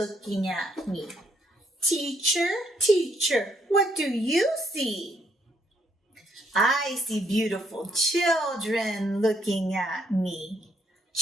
at me. Teacher, what do you see? I see beautiful children looking at me.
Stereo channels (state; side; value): normal; both; correlation 0.70